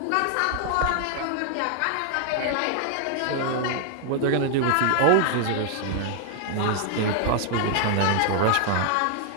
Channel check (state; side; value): different; both; correlation 0.00